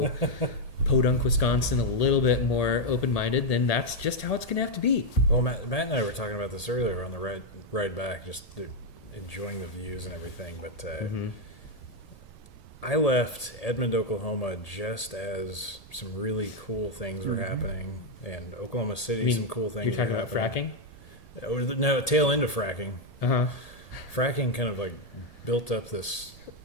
Podunk, Wisconsin, a little bit more open-minded, then that's just how it's going to have to be. Well, Matt and I were talking about this earlier on the ride back, just enjoying the views and everything, but. I left Edmond, Oklahoma, just as some really cool things were happening, and Oklahoma City, some cool things. You're talking about fracking? No, tail end of fracking. Uh-huh. Fracking kind of like built up this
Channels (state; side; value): late; right; 1.8 ms